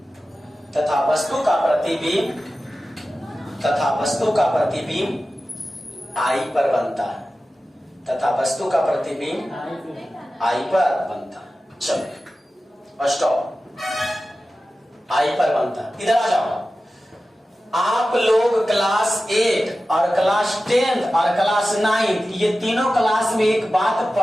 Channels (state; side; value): normal; both; correlation 0.94